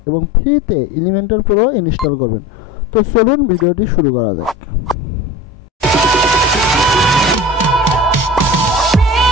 এবং ফ্রিতে এলিমেন্টর প্রো ইনস্টল করবেন। তো চলুন ভিডিওটি শুরু করা যাক।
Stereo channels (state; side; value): normal; both; correlation 0.36